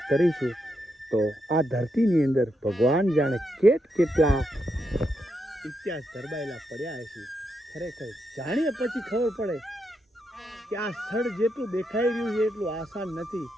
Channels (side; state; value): both; normal; correlation 0.82